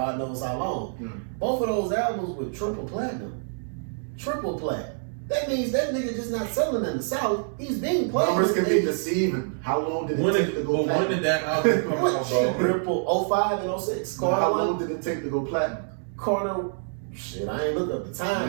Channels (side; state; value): left; silent; digital silence